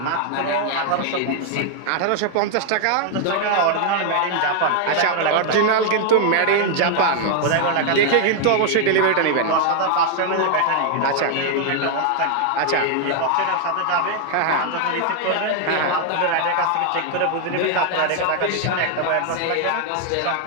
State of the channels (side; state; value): both; different; correlation 0.00